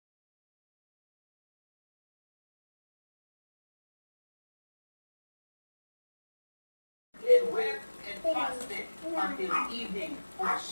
And wept and fasted until evening for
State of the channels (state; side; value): inverted; both; correlation -1.00